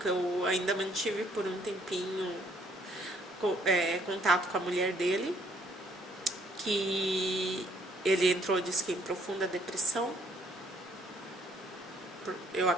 eu ainda mantive por um tempinho contato com a mulher dele, que ele entrou, disse que em profunda depressão. Eu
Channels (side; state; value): both; normal; correlation 0.64